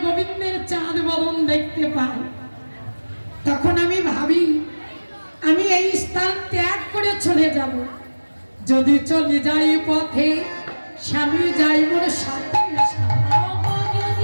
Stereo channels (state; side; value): inverted; both; correlation -1.00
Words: গোবিন্দের চাঁদ বদন দেখতে পাই। তখন আমি ভাবি আমি এই স্থান ত্যাগ করে চলে যাব। যদি চলে যাই পথে স্বামী যাই মোর সাথে,